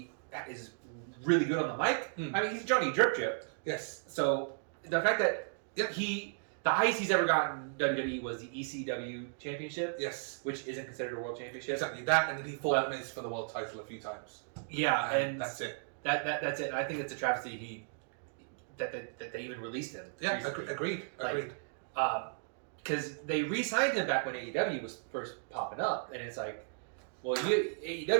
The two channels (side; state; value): left; silent; digital silence